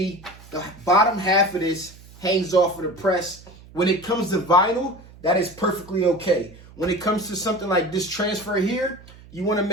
the bottom half of this hangs off of the press. When it comes to vinyl, that is perfectly okay. When it comes to something like this transfer here, you want to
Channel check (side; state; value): right; noise; hum, 21 dB below the sound